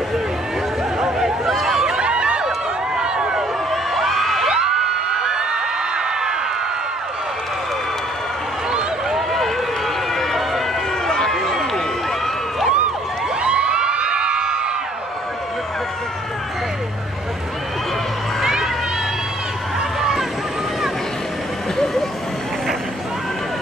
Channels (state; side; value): normal; both; correlation 0.61